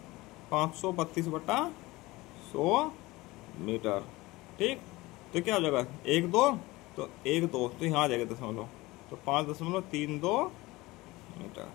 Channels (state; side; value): quieter; right; 20.6 dB